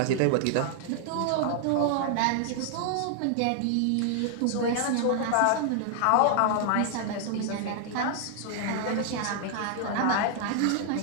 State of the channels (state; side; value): different; both; correlation 0.00